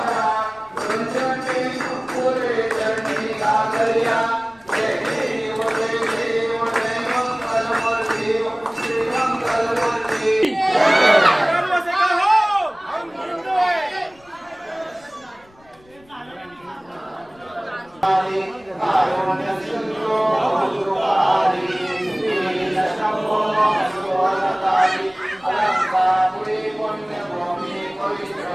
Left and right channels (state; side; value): noise; left; rumble, 29 dB below the sound